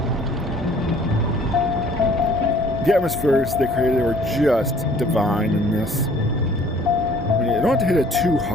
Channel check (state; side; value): normal; both; correlation 0.55